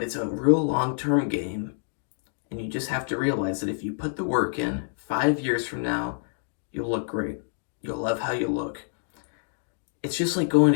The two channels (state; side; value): silent; right; digital silence